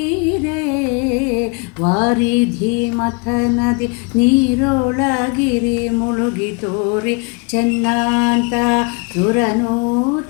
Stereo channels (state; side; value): quieter; right; 31.5 dB